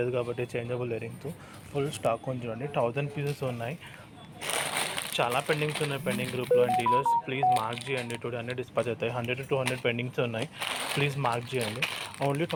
కాబట్టి చేంజబుల్ ఇయరింగ్స్ ఫుల్ స్టాక్ ఉంది చూడండి. 1000 పీసెస్ ఉన్నాయి. చాలా పెండింగ్స్ ఉన్నాయి పెండింగ్ గ్రూప్లో. అండ్ డీలర్స్ ప్లీజ్ మార్క్ చేయండి, టుడే అన్నీ డిస్పాచ్ అవుతాయి. 100 to 200 పెండింగ్స్ ఉన్నాయి, ప్లీజ్ మార్క్ చేయండి. ఓన్లీ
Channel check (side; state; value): both; identical; correlation 1.00